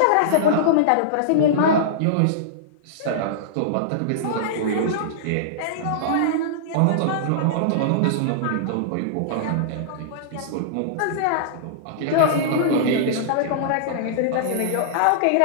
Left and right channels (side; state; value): both; different; correlation -0.02